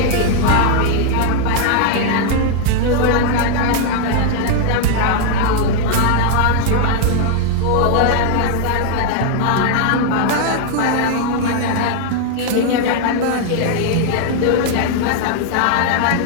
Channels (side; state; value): both; different; correlation 0.00